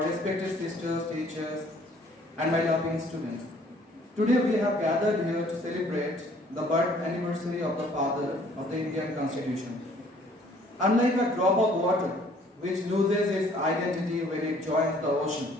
respected sisters, teachers, and my loving students. Today we have gathered here to celebrate the birth anniversary of the father of the Indian Constitution. Unlike a drop of water, which loses its identity when it joins the ocean,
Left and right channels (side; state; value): both; normal; correlation 0.58